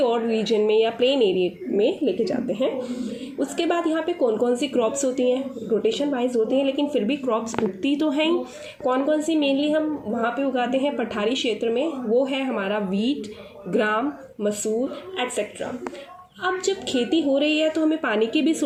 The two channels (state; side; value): identical; both; correlation 1.00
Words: और रीजन में या प्लेन एरिया में लेके जाते हैं। उसके बाद यहाँ पे कौन कौन सी क्रॉप्स होती हैं, रोटेशन वाइज होती हैं, लेकिन फिर भी क्रॉप्स उगती तो हैं ही। कौन कौन सी मेनली हम वहाँ पे उगाते हैं पठारी क्षेत्र में, वो है हमारा वीट, ग्राम, मसूर एट्सेट्रा। अब जब खेती हो रही है तो हमें पानी के भी